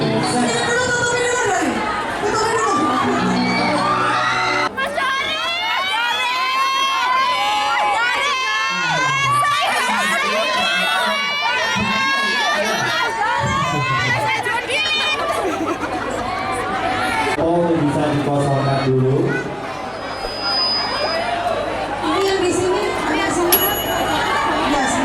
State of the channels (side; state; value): both; identical; correlation 1.00